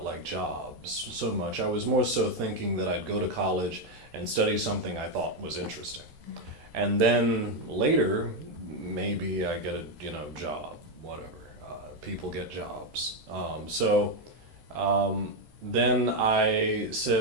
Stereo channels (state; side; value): late; left; 14 ms